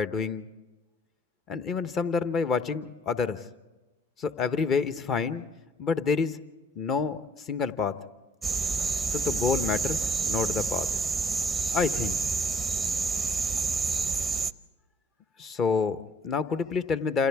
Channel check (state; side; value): normal; both; correlation 0.62